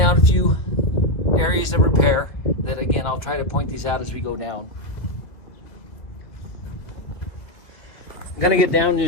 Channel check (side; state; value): right; late; 1.8 ms